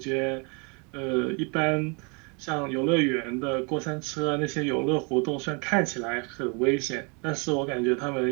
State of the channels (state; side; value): quieter; left; 32.8 dB